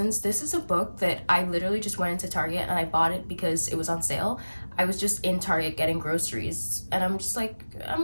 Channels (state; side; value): inverted; both; correlation -1.00